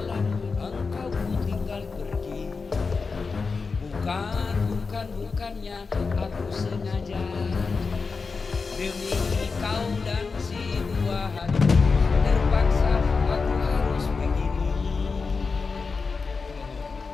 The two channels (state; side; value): quieter; right; 4.6 dB